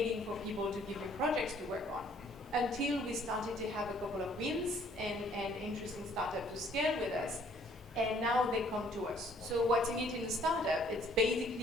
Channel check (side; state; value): both; normal; correlation 0.61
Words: for people to give me projects to work on, until we started to have a couple of wins and interesting startups to scale with us. And now they come to us. So what's in it in the startup? It's